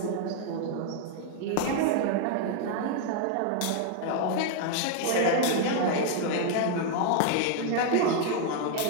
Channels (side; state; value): both; different; correlation 0.00